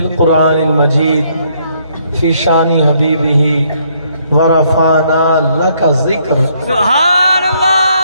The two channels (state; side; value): inverted; both; correlation -0.69